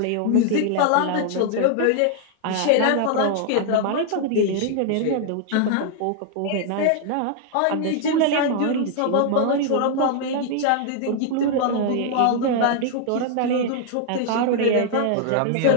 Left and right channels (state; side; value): different; both; correlation -0.01